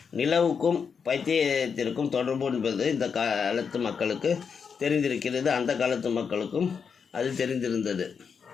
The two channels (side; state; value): right; quieter; 6.2 dB